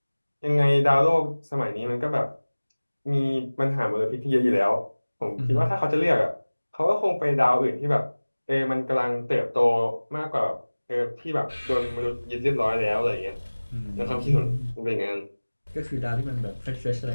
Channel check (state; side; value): inverted; both; correlation -1.00